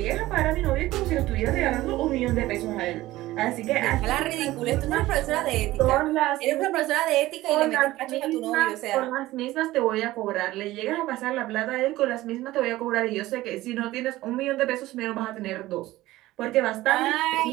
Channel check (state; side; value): quieter; left; 16.9 dB